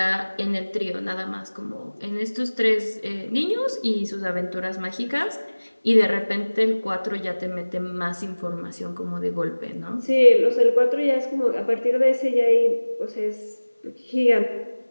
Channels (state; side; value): inverted; both; correlation -1.00